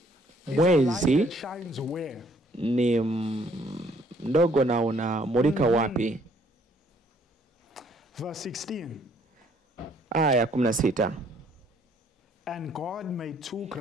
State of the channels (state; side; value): normal; both; correlation 0.63